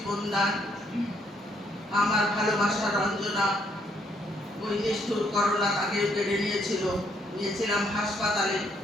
দান। আমার ভালোবাসা রঞ্জনা ওই নিষ্ঠুর করোনা তাকে কেড়ে নিয়েছিলাম হাসপাতালে,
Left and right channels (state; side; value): normal; both; correlation 0.71